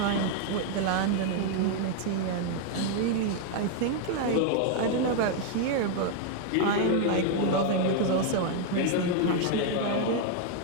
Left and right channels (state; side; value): different; both; correlation 0.00